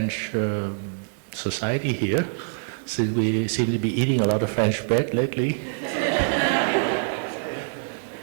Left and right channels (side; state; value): left; silent; digital silence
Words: society here, since we seem to be eating a lot of French bread lately.